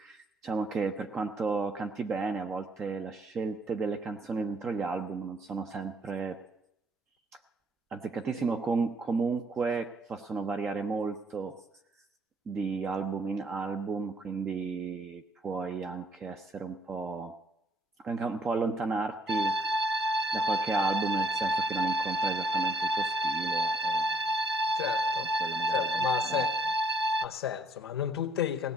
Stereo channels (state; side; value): normal; both; correlation 0.65